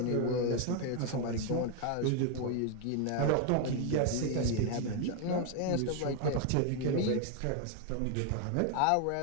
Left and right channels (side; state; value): both; different; correlation 0.01